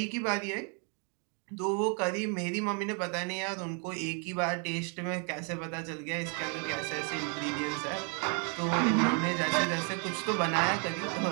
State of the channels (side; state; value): left; quieter; 39.2 dB